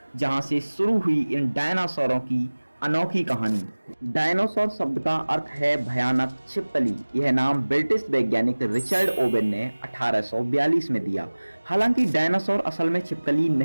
जहां से शुरू हुई इन डायनासोरों की अनोखी कहानी। डायनासोर शब्द का अर्थ है भयानक छिपकली। यह नाम ब्रिटिश वैज्ञानिक रिचर्ड ओवेन ने 1842 में दिया। हालांकि डायनासोर असल में छिपकली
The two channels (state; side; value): inverted; both; correlation -1.00